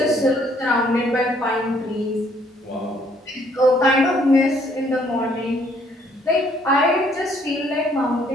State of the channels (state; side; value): normal; both; correlation 0.65